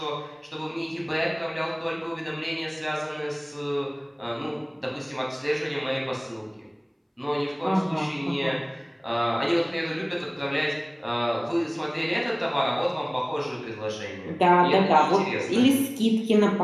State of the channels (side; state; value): both; identical; correlation 1.00